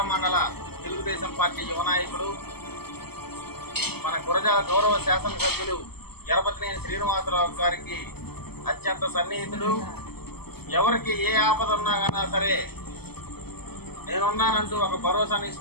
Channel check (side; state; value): right; late; 0.96 ms